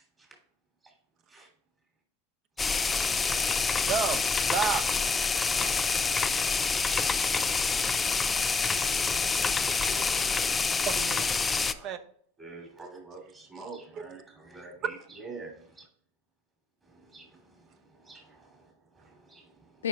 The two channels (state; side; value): quieter; right; 3.3 dB